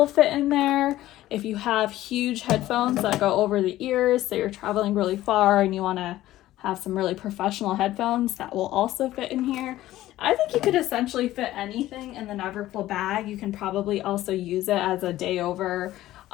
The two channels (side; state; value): right; quieter; 15.0 dB